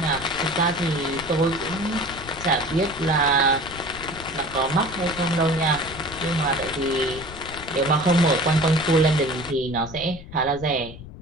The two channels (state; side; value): noise; left; rumble, 15 dB below the sound